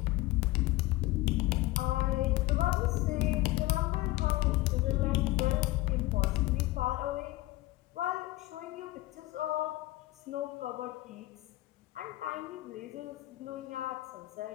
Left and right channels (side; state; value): right; quieter; 18.6 dB